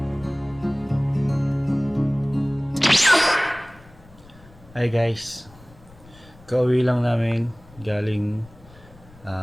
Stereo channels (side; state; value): left; noise; rumble, 23 dB below the sound